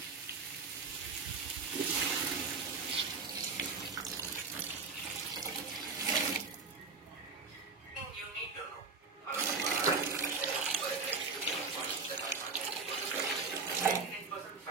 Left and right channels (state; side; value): quieter; left; 4.5 dB